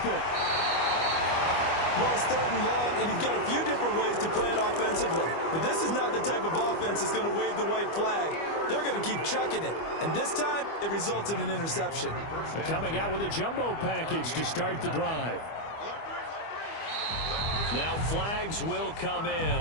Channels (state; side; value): late; right; 25 ms